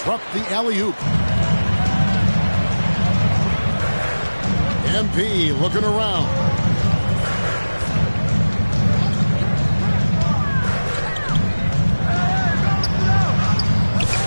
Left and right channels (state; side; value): inverted; both; correlation -1.00